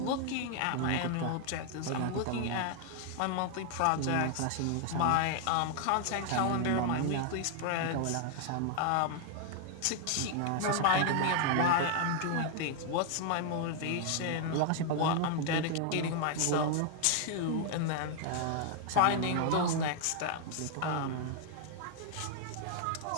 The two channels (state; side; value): different; both; correlation 0.00